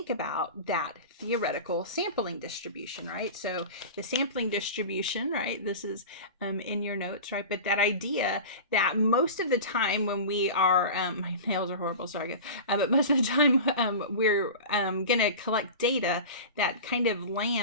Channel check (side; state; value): both; inverted; correlation -0.31